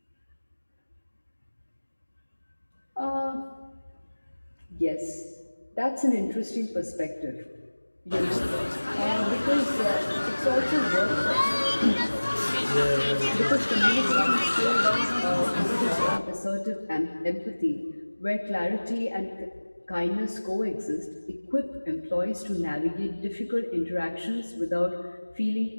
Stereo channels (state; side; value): inverted; both; correlation -1.00